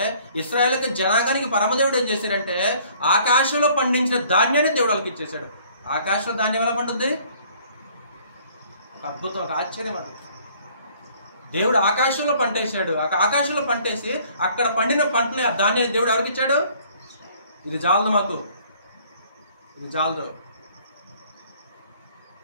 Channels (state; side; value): inverted; both; correlation -0.58